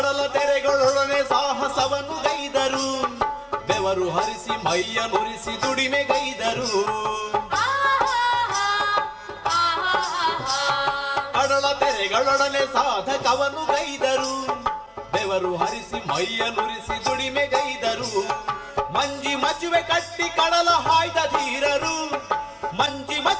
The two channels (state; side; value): identical; both; correlation 1.00